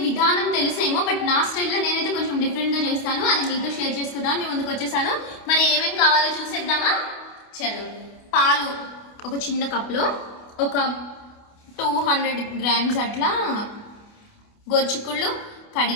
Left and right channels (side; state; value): right; late; 28 ms